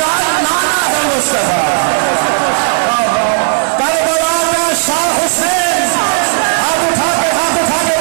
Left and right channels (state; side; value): silent; left; digital silence